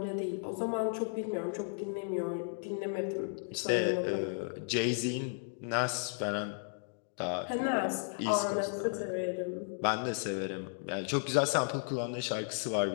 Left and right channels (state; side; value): silent; right; digital silence